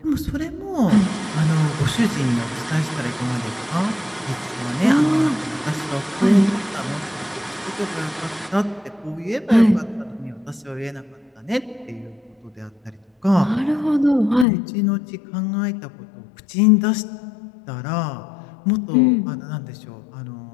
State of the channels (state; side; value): drops out; right; at 14.5 s